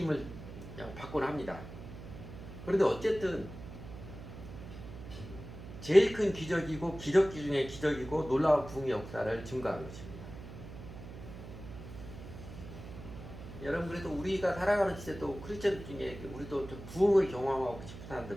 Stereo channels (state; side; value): noise; right; hum, 13 dB below the sound